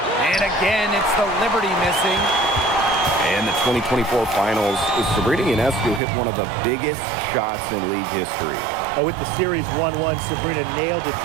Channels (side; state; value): left; drops out; at 6.0 s